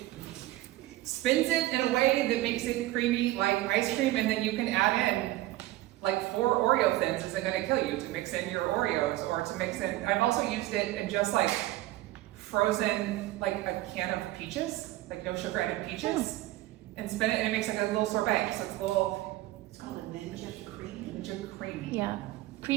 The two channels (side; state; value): left; quieter; 16.6 dB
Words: spins it in a way that makes it creamy like ice cream, and then you can add in like 4 Oreo thins. Isn't going to kill you to mix in your Oreos or to mix in. I've also used it in just like frozen like a can of peaches, like no sugar added peaches, and spin it, and it makes like a little sorbet. So it's a little It's called a Ninja Cream. Ninja Creamy. Yeah,